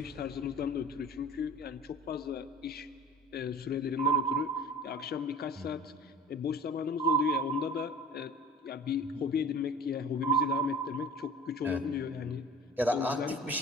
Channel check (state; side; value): normal; both; correlation 0.42